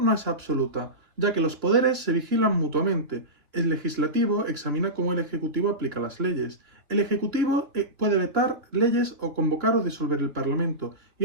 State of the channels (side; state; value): left; late; 3.0 ms